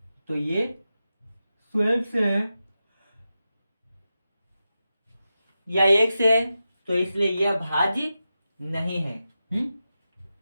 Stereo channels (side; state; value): both; inverted; correlation -0.91